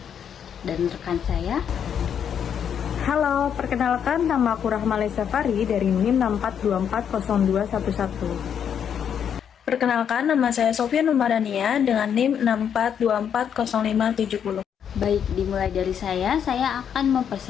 Dan rekan saya. Halo, perkenalkan nama aku Rahmale Safari dari NIM 64240211. Perkenalkan, nama saya Sofia Numadania dengan NIM 64240570. Baik, dimulai dari saya akan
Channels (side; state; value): right; quieter; 8.3 dB